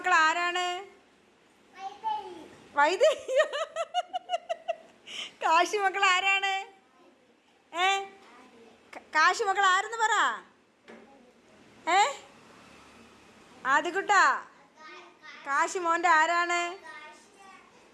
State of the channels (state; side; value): identical; both; correlation 1.00